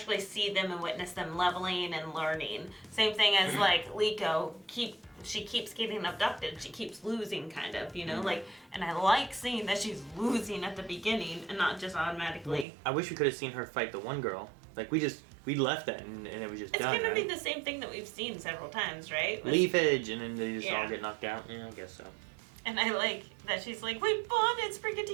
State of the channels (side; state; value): left; drops out; at 12.7 s